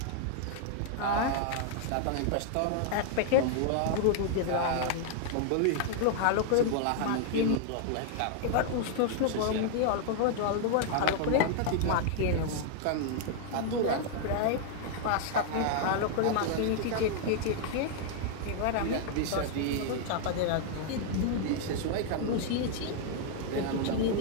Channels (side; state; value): both; different; correlation -0.01